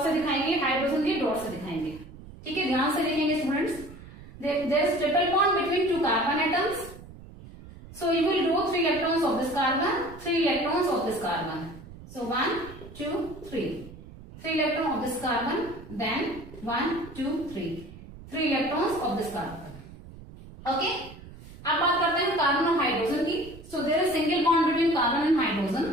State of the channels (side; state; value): right; noise; rumble, 17 dB below the sound